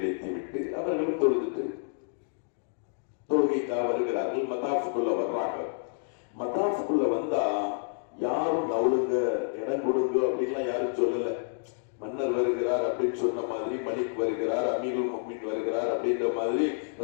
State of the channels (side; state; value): right; silent; digital silence